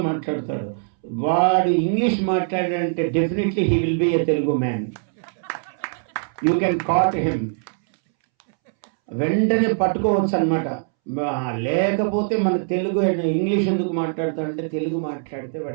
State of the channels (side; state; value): left; silent; 64 dB below the other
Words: మాట్లాడతాడు. వాడు ఇంగ్లీష్ మాట్లాడాడంటే definitely he will be a Telugu man. You can caught him, వెంటనే పట్టుకోవచ్చు అనమాట. లేకపోతే మన తెలుగు ఇంగ్లీష్ ఎందుకు మాట్లాడతాడంటే తెలుగు మాట్లాడితే